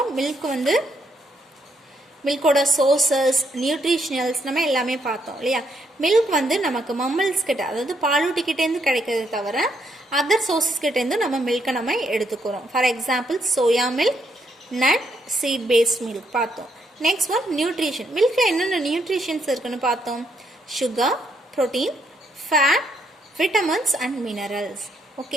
மில்க் வந்து மில்கோட சோர்சஸ், நியூட்ரிஷனல்ஸ் நம்ம எல்லாமே பார்த்தோம் இல்லையா? மில்க் வந்து நமக்கு மம்மல்ஸ் கிட்ட, அதாவது பாலூட்டிக்கிட்டேருந்து கிடைக்கிறது தவிர அதர் சோர்சஸ் கிட்டேருந்து நம்ம மில்கை நம்ம எடுத்துக்கிறோம். For example soya milk, nut, seed based milk பார்த்தோம். Next one nutrition. மில்கில் என்னென்ன நியூட்ரிஷன்ஸ் இருக்குன்னு பார்த்தோம். sugar, protein, fat, vitamins and minerals.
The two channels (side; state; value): both; normal; correlation 0.75